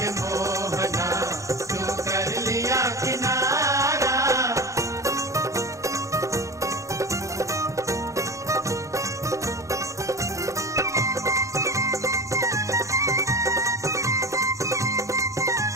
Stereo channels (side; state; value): left; late; 0.15 ms